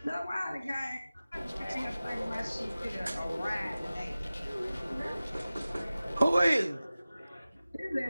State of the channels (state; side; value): inverted; both; correlation -0.97